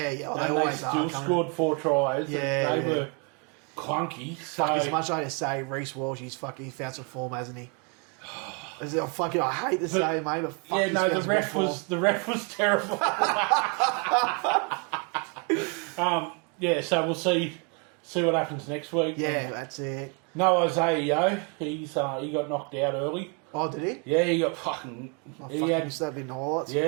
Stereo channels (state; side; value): quieter; left; 35.7 dB